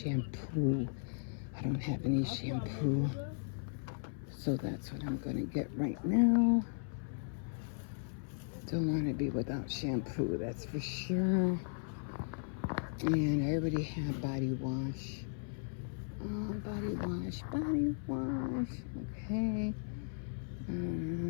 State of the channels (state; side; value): silent; right; 53 dB below the other